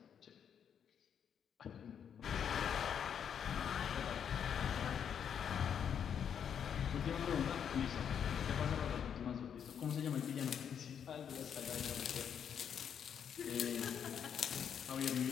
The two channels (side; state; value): right; quieter; 8.1 dB